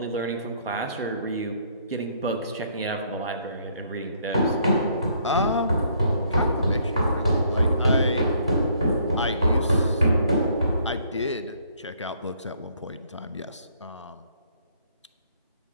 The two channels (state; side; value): inverted; both; correlation -0.66